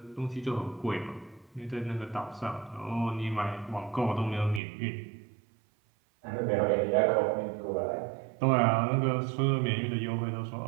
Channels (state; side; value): drops out; left; at 4.6 s